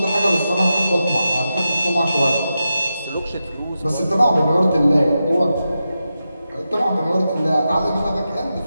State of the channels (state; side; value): inverted; both; correlation -0.89